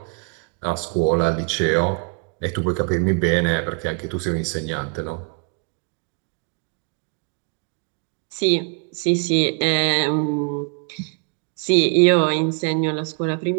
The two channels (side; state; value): left; quieter; 35.7 dB